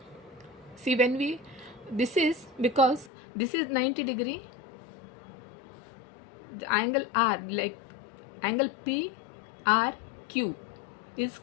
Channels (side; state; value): right; drops out; at 3.1 s